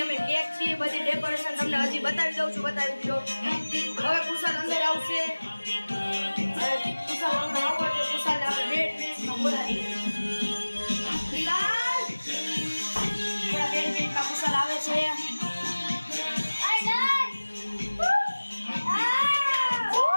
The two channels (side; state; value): both; inverted; correlation -1.00